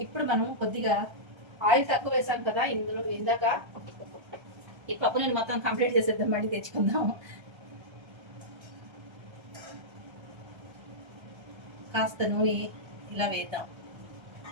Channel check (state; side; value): late; left; 1.3 ms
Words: ఇప్పుడు మనం కొద్దిగా ఆయిల్ తక్కువ వేసాం కదా ఇందులో, ఇందాక ఈ పప్పు నేను మొత్తం కంప్లీట్ చేసేద్దాం, మళ్ళీ తెచ్చుకుందాం. కాస్త నూనె ఇలా వేద్దాం.